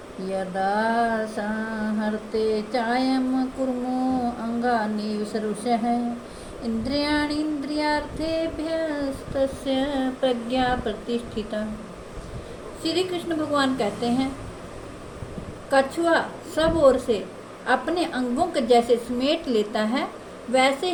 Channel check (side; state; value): both; identical; correlation 1.00